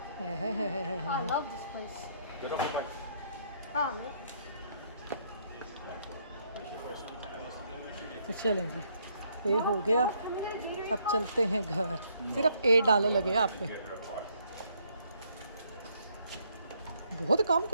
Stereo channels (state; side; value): inverted; both; correlation -0.70